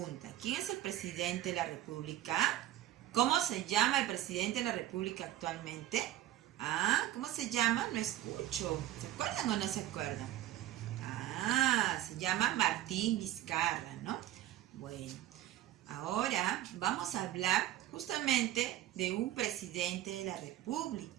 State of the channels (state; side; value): quieter; left; 13.7 dB